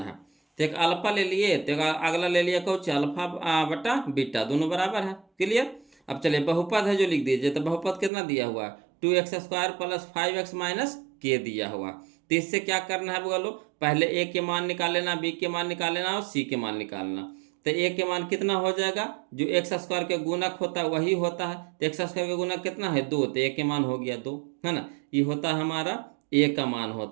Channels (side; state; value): left; drops out; at 8.1 s